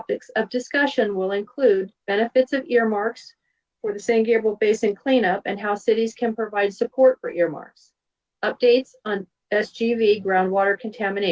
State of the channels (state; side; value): identical; both; correlation 1.00